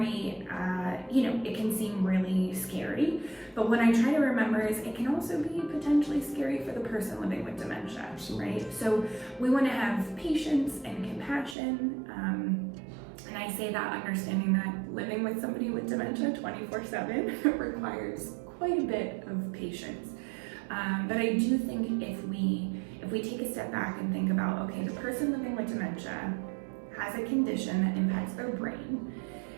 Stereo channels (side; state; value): left; drops out; at 11.6 s